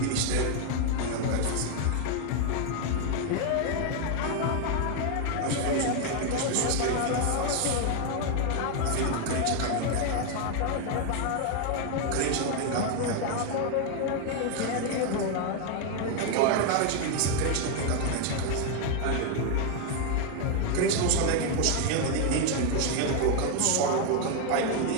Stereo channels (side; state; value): both; different; correlation 0.01